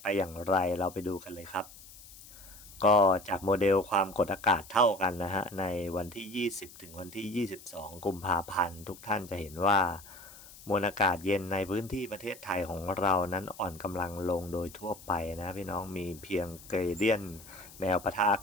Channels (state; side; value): noise; left; hiss, 19 dB below the sound